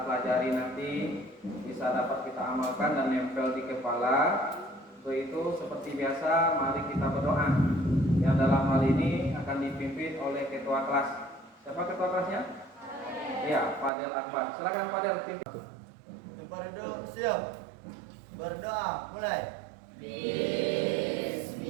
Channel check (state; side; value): drops out; left; at 13.9 s